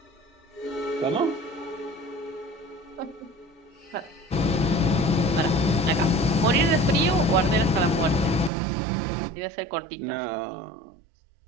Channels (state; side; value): drops out; left; at 8.5 s